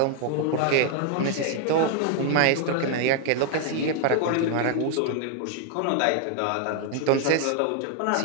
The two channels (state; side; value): different; both; correlation 0.00